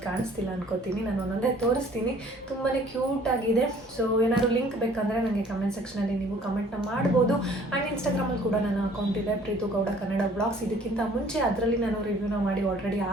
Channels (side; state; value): both; normal; correlation 0.55